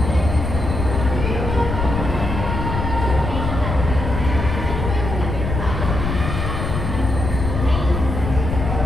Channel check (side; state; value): left; noise; rumble, 3 dB below the sound